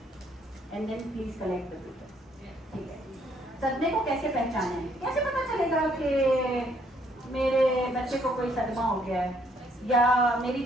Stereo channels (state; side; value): normal; both; correlation 0.67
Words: And then please collect the papers. ٹھیک ہے. صدمے کو کیسے پہچانیں، کیسے پتا چلے گا کہ میرے بچے کو کوئی صدمہ ہو گیا ہے، یا میری